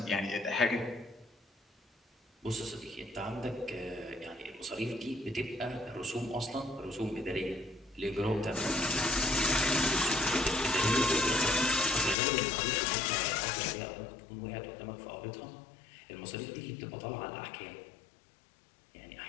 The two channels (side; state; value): right; drops out; at 12.2 s